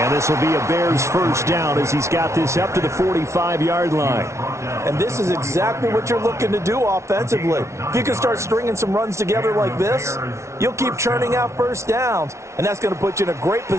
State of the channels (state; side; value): late; left; 0.13 ms